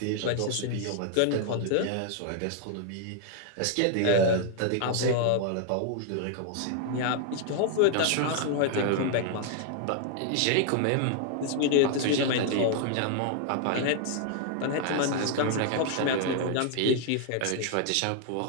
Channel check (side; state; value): both; different; correlation 0.00